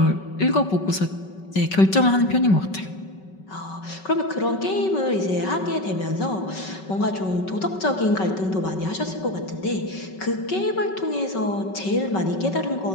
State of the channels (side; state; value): right; late; 5.3 ms